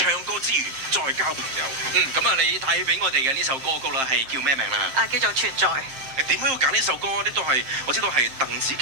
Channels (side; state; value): left; late; 7.6 ms